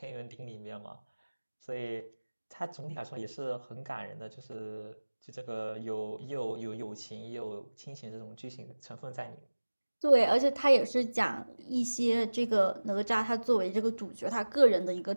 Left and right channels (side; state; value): both; inverted; correlation -1.00